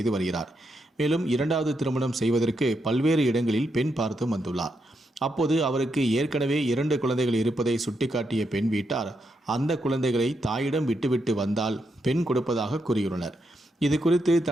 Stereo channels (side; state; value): both; normal; correlation 0.82